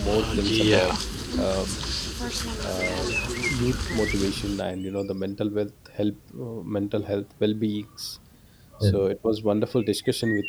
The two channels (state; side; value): identical; both; correlation 1.00